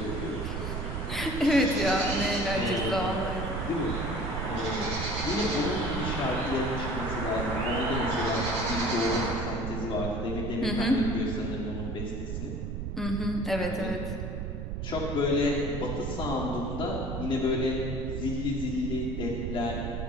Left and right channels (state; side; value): noise; right; rumble, 4 dB below the sound